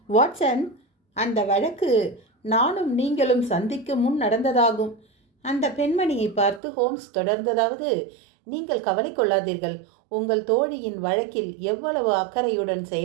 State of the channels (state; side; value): drops out; left; at 6.6 s